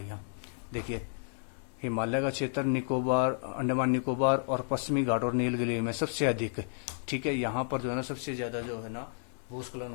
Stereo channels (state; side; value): silent; right; digital silence